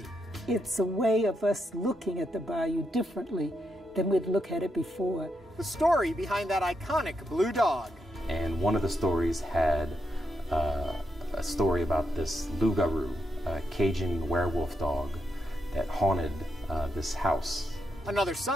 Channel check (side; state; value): both; normal; correlation 0.82